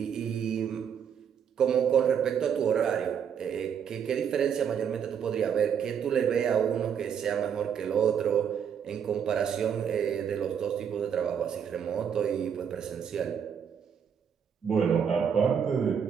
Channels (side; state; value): left; quieter; 7.8 dB